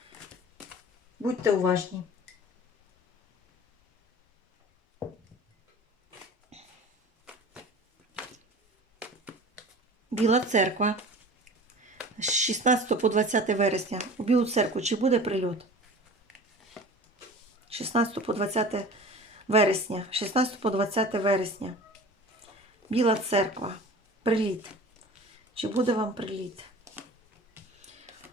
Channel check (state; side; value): normal; both; correlation 0.39